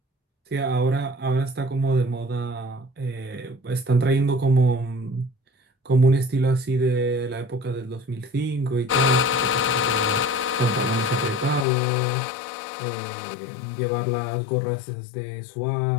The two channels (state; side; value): drops out; right; at 11.7 s